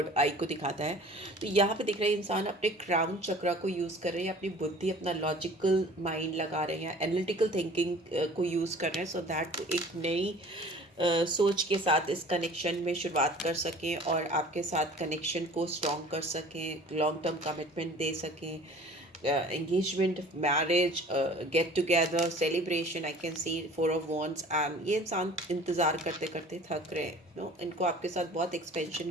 आई को दिखाता है। तो यहाँ पे दिख रहा है इंसान अपने क्राउन चक्रा को यूज़ कर रहे हैं, अपनी बुद्धि, अपना लॉजिकल माइंड लगा रहे हैं, एनालिटिकल थिंकिंग को यूज़ कर रहे हैं, सो दैट एक नई सोच के साथ इस कनेक्शन में शुरुआत कर सकें और आपके साथ कनेक्शन को स्ट्रॉन्ग कर सकें, लॉन्ग टर्म कमिटमेंट दे सकें। Engagement, marriage, get together, celebration, I can see 4 of Wands। And ये इंसान इंतज़ार करते करते थक रहे हैं, नो, इनको आपके साथ बहुत एक्सपेंशन,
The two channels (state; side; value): normal; both; correlation 0.47